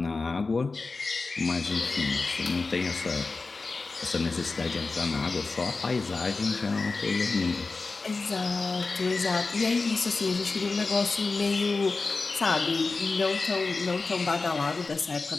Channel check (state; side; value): quieter; right; 3.9 dB